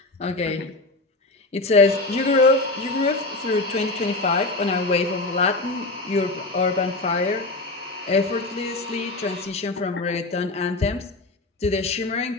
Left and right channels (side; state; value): right; quieter; 3.1 dB